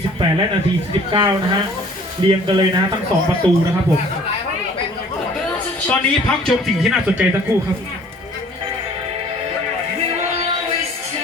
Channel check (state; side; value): normal; both; correlation 0.52